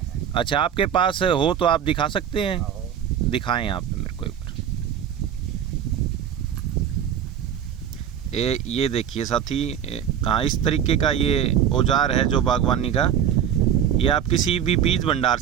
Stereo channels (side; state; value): left; quieter; 9.2 dB